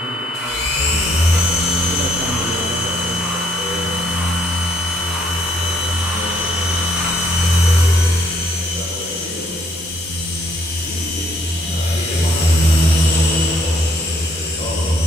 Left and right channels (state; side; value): normal; both; correlation 0.67